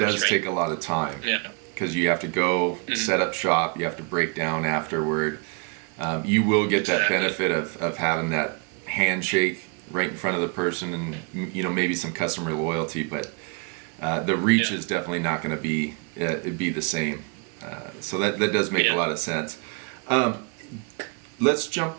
does take a lot of time. Yeah. Because you have to go set up shop, you have to break down afterward. You will get that benefit of having that handshake right in front of the person, and maybe some customer loyalty, but the reach is definitely not going to be the same. So that does make a lot of sense. Let's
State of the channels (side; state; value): left; quieter; 35.1 dB